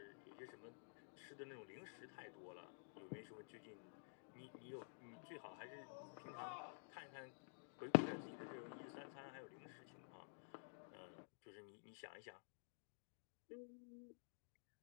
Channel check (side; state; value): right; silent; digital silence